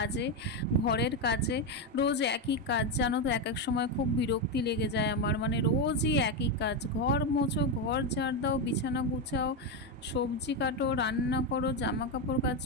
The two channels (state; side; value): normal; both; correlation 0.09